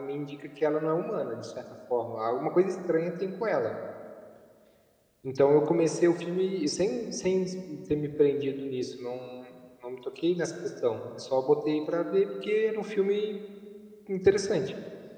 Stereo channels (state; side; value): identical; both; correlation 1.00